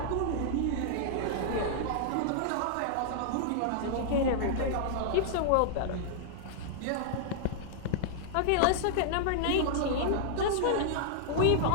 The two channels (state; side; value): different; both; correlation -0.01